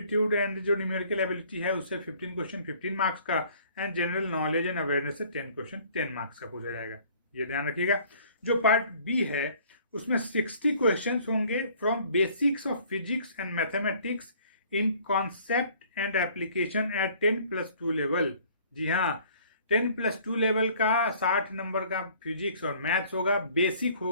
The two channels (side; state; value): both; inverted; correlation -0.55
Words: एंड जो न्यूमेरिकल एबिलिटी है उससे 15 क्वेश्चन 15 मार्क्स का। And general knowledge and awareness से 10 क्वेश्चन 10 मार्क्स का पूछा जाएगा, ये ध्यान रखिएगा। जो पार्ट बी है उसमें 60 क्वेश्चन होंगे from basics of physics and mathematics in concept and application at 10+2 level. जी हाँ, 10+2 लेवल का 60 नंबर का फिजिक्स और मैथ्स होगा। बेसिक